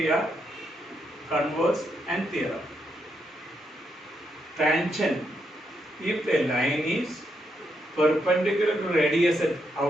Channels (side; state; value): both; normal; correlation 0.80